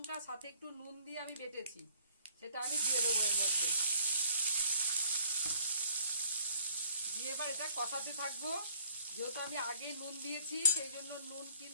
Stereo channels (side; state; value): both; inverted; correlation -0.59